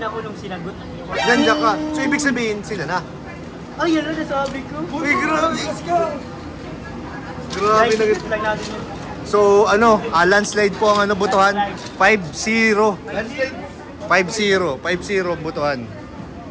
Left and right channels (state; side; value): identical; both; correlation 1.00